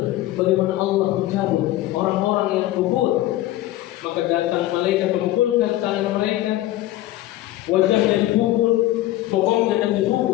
bagaimana Allah mencabut orang-orang yang kufur. Maka datang malaikat memukulkan tangan mereka, wajahnya dipukul, bokongnya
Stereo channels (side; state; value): right; quieter; 15.4 dB